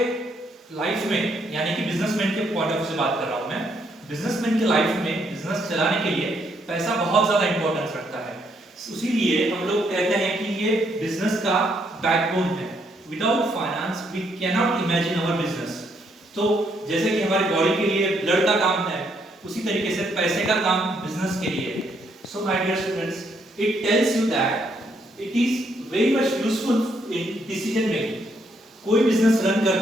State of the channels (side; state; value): both; normal; correlation 0.73